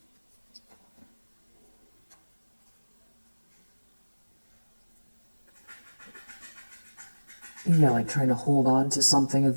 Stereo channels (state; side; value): inverted; both; correlation -1.00